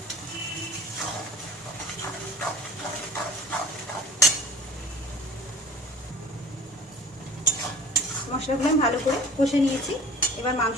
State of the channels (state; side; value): normal; both; correlation 0.44